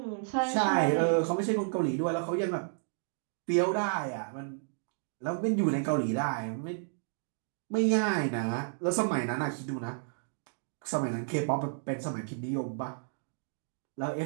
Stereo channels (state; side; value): silent; left; digital silence